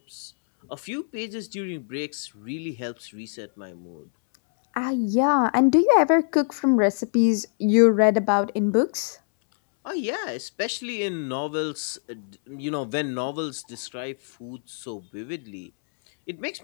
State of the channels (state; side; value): silent; right; 62 dB below the other